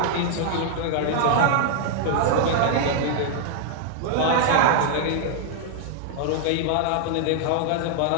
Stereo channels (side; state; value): both; different; correlation -0.01